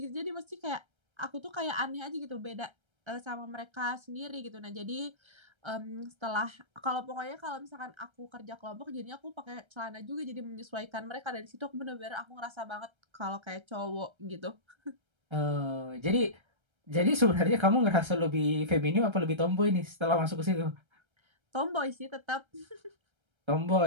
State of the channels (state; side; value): late; left; 1.3 ms